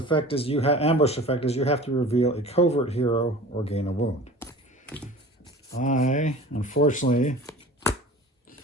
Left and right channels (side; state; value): both; normal; correlation 0.40